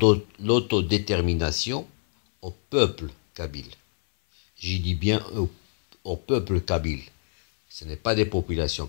l'autodétermination au peuple kabyle. J'y dis bien au peuple kabyle. Ce n'est pas des populations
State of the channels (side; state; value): right; silent; 59 dB below the other